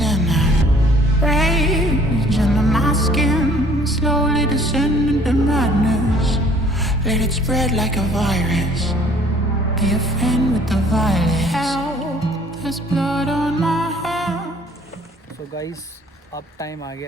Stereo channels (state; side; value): normal; both; correlation 0.56